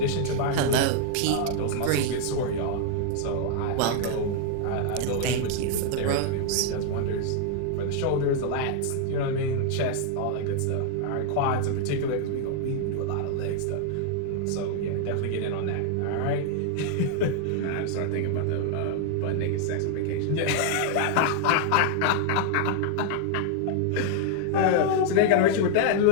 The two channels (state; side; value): different; both; correlation 0.00